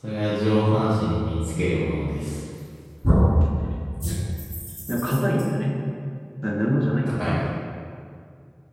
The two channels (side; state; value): both; identical; correlation 1.00